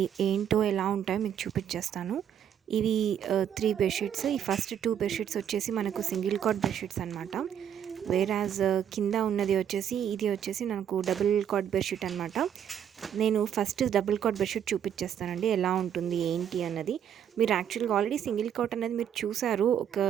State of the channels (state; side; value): quieter; left; 9.2 dB